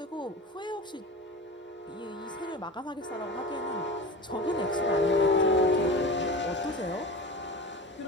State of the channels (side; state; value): both; normal; correlation 0.32